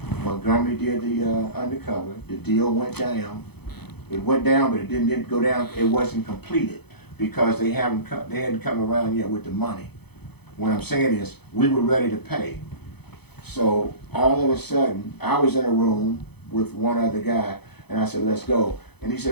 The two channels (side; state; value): right; late; 0.98 ms